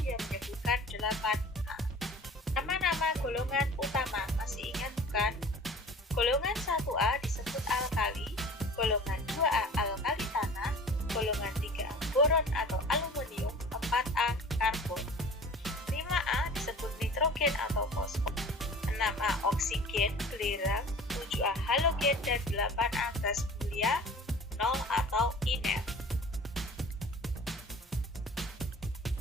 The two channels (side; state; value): both; normal; correlation 0.42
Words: yang menyebutkan 8A. Nama-nama golongan utama masih ingat bukan? Golongan 1A disebut alkali, golongan 2A alkali tanah, golongan 3A boron atau aluminium, 4A karbon. 5A disebut nitrogen atau fosfor, 6A oksigen, belerang, 7A halogen, dan 8A gas mulia, 0 atau inert.